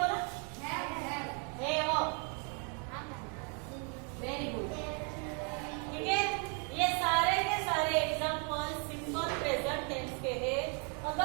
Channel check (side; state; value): left; quieter; 37.2 dB